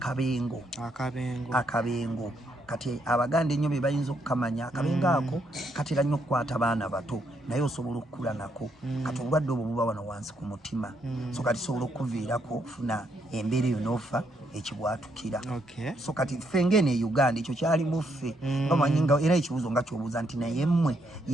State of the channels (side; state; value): both; normal; correlation 0.75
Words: kati abaganda ennyo be bayinza okukamanya akabenga ako katera nnyo okukwata baana bato naye osobola okukula nako kati obulwadde obwo buba wano wansi ku mutima so kati sobola okuviirako ofuna embeera eyo n'ofa ekibwatukira so kati ffe ng'eno e Uganda ekyo kyali muffe bamanyi nga era ekibuuzo nga kyobuuza nti naye mmwe